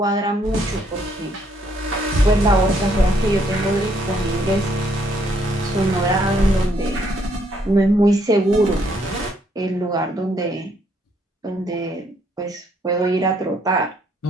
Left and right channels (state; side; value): normal; both; correlation 0.69